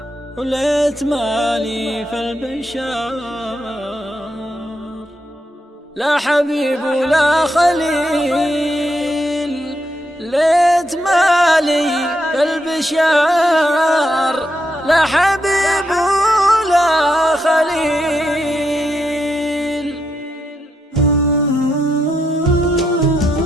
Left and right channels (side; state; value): both; normal; correlation 0.81